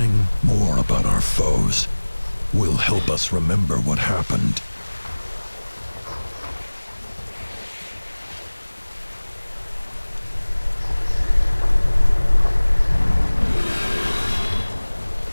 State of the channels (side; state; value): both; inverted; correlation -1.00